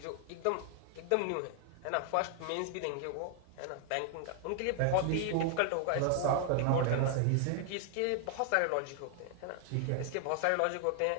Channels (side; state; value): both; different; correlation 0.00